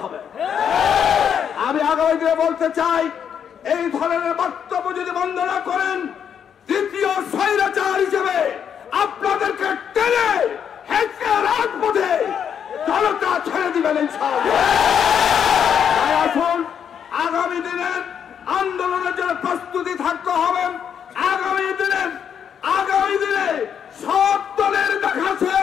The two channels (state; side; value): quieter; right; 8.1 dB